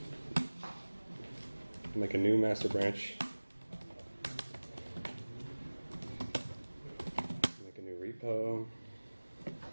Make a new master branch. Make a new repo.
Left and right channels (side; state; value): both; inverted; correlation -1.00